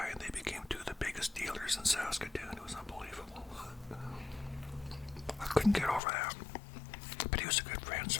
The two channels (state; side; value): drops out; right; at 6.0 s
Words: and they became 2 of the biggest dealers in Saskatoon. It was unbelievable. I couldn't get over that. But he was a good friend,